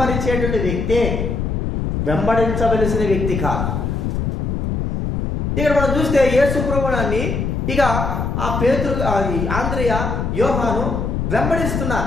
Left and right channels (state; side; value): noise; left; rumble, 1 dB below the sound